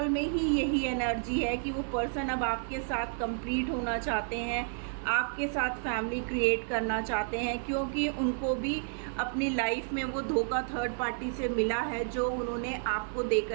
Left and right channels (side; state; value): left; silent; 57 dB below the other